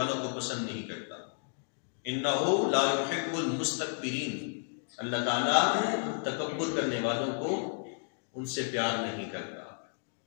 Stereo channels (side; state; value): right; silent; 56 dB below the other